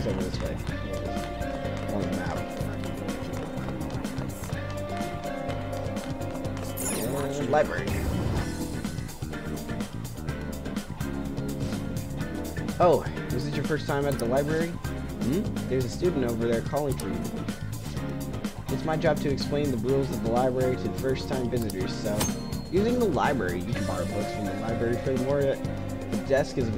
over this way. Here it is. On the map. And library. Oh, is this your first time at the library? Hmm? There's a student over there calling for you. It's my job to explain the rules of the library to first-time visitors, so... Using the library, you can borrow books from the library. Furthermore, the desk is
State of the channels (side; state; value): both; identical; correlation 1.00